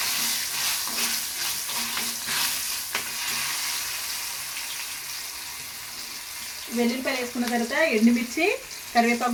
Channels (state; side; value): identical; both; correlation 1.00